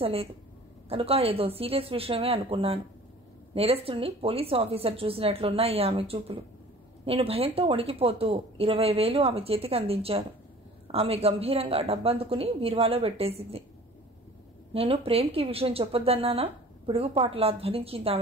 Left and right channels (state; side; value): normal; both; correlation 0.46